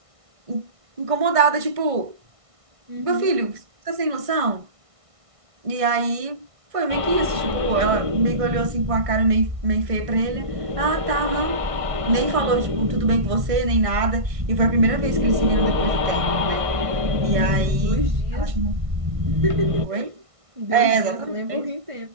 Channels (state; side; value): late; left; 1.6 ms